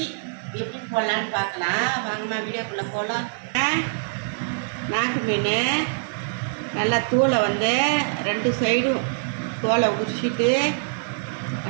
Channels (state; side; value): silent; left; 59 dB below the other